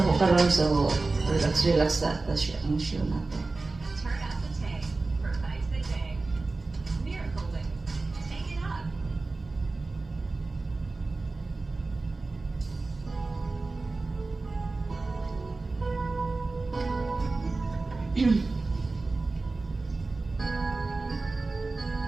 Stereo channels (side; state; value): left; quieter; 3.5 dB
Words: so relax sa siya ang show natin.